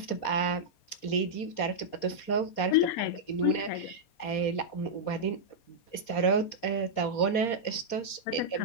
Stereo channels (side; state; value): right; late; 4.2 ms